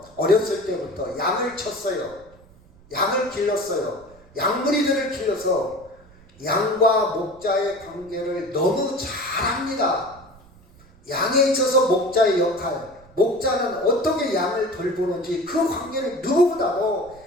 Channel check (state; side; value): noise; right; rumble, 25 dB below the sound